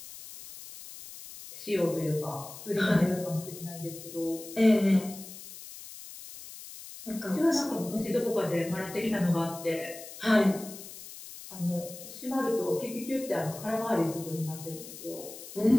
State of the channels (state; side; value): noise; left; hiss, 14 dB below the sound